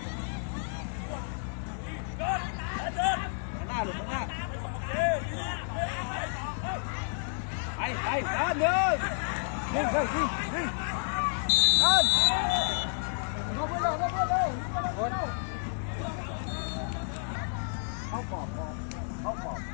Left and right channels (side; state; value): right; silent; digital silence